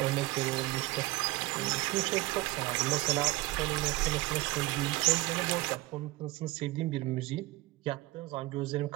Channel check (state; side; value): quieter; left; 19.9 dB